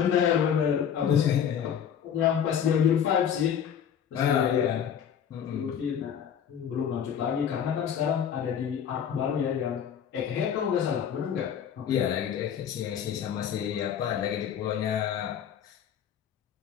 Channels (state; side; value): quieter; right; 8.5 dB